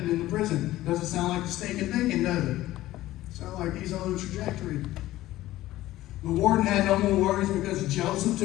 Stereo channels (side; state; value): right; quieter; 15.8 dB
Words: in the prison. Doesn't sound like the stinking thinking, does it? Sounds like he's on a trajectory. The warden had no more worries because Joseph